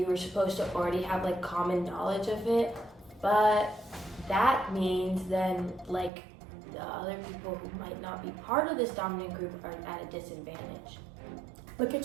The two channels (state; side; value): drops out; left; at 6.1 s